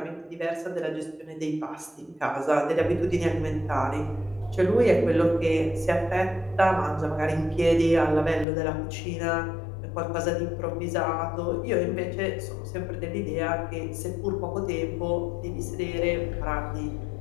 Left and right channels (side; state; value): right; drops out; at 8.5 s